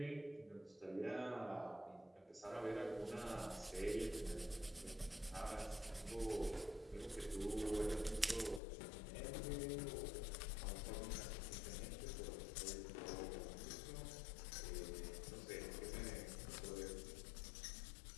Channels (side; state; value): right; drops out; at 8.6 s